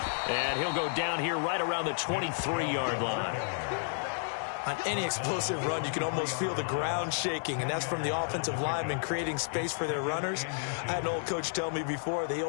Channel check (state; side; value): silent; right; digital silence